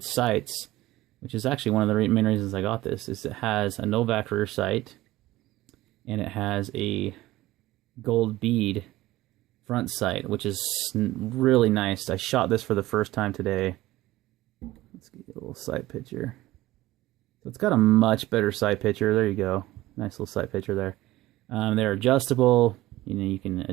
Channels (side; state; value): left; quieter; 17.0 dB